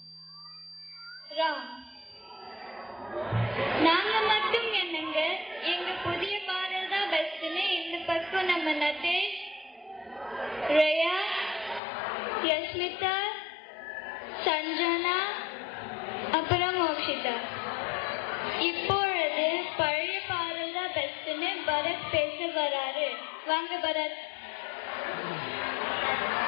ராம். நாங்க மட்டும் என்னங்க, எங்க புதிய பாடல் தான் பெஸ்ட்னு இந்த பக்கம் நம்ம நதேஷ், ரயா, யஸ்மிதா, சஞ்சனா, அப்புறம் மோக்ஷிதா. இப்பொழுது பழைய பாடல் தான் பெஸ்ட்னு பரத் பேச வராரு. வாங்க பரத்.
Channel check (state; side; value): drops out; right; at 11.8 s